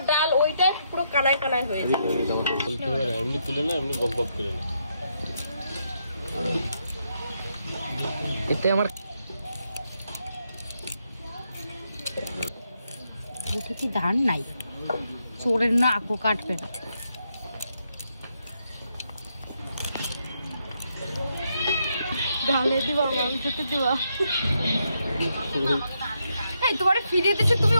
ডাল ওইটাই পুরো কানায় কানায় হয়েছে। এমনি তুলে না, এমনি গপ গপ করে না। এতে আমার কি ধান নাই, চোরের না আকো কাটবে না। তোমার ফিরে দিচ্ছে, তুমি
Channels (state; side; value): inverted; both; correlation -0.79